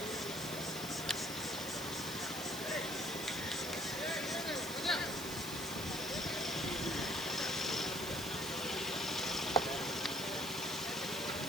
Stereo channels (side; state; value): right; noise; hiss, 8 dB below the sound